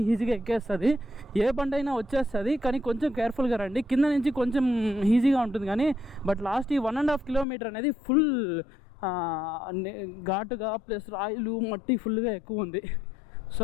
ఈజీగా ఎక్కేస్తుంది, ఏ బండి అయినా వచ్చేస్తుంది. కానీ కొంచెం కేర్ఫుల్గా రండి, కింద నుంచి కొంచెం ఈజీగా ఉంటుంది. కానీ బట్ లాస్ట్ ఈ 1.5 కిలోమీటర్ అనేది ఫుల్ ఘాటుగా ప్లస్ రాయిలు మట్టి ఫుల్గా ఎక్కువ ఉంది.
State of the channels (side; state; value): right; drops out; at 7.5 s